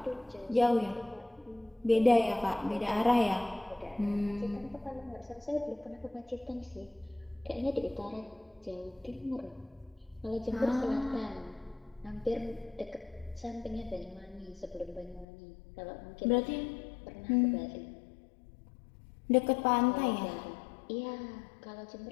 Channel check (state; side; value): drops out; right; at 15.2 s